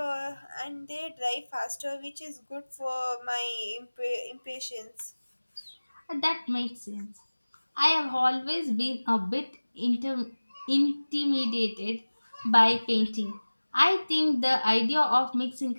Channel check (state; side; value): inverted; both; correlation -1.00